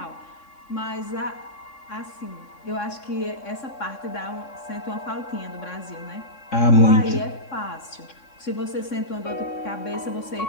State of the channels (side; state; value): right; late; 3.6 ms